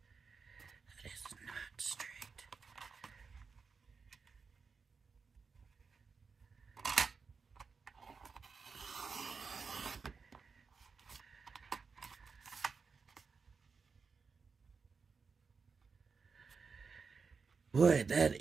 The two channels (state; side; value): quieter; left; 5.1 dB